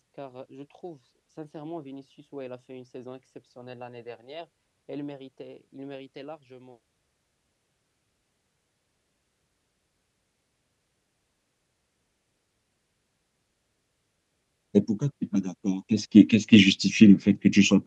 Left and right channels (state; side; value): identical; both; correlation 1.00